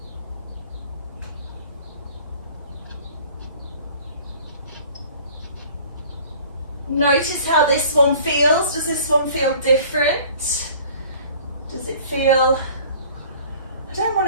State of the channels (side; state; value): both; inverted; correlation -0.49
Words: Notice how this one feels. Does this one feel different? Does it feel, I don't want